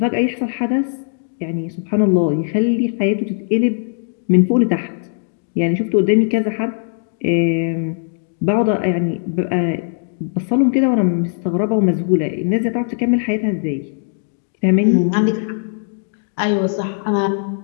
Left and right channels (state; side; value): silent; right; digital silence